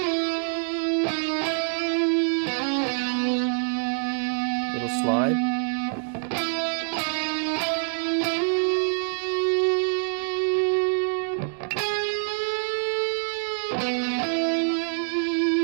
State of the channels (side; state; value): left; silent; 55 dB below the other